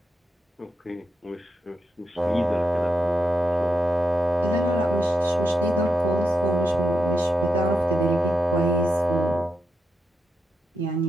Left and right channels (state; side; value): normal; both; correlation 0.85